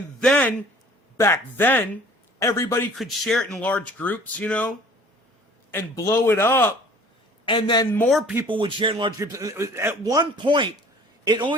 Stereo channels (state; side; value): normal; both; correlation 0.50